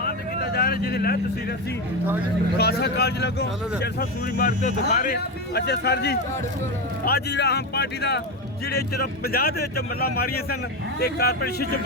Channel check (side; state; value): both; normal; correlation 0.15